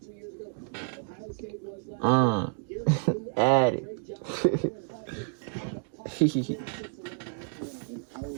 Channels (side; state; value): left; silent; 58 dB below the other